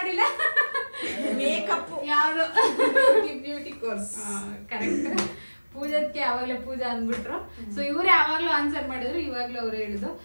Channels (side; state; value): both; inverted; correlation -1.00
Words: ಮೇಕಪ್ ಯಾವ್ದು ಬ್ಯೂಟಿ ಕೋರ್ಸ್. ಕರೆಕ್ಟ್. ಪೂಜಾದ್ಕೆ ಯಾವಾಗ್ಲೇ ಪೂಜಾ ಅಂದ್ಬಿಟ್ರು. ಸೊ ಇವರೇ ಯಾವಾಗ್ಲೂ ಆನ್ಸರ್ ಮಾಡಿದ್ರು, ಇವಾಗ್ಲೂ ಅವ್ರು ಹೇಳಿದ್ರು